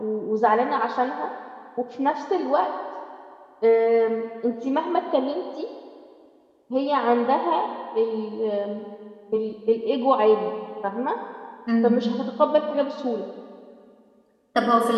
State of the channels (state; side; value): identical; both; correlation 1.00